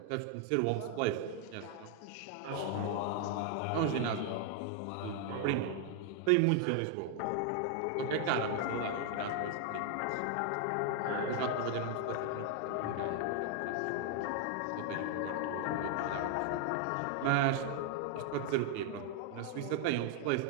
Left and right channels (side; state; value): both; different; correlation 0.00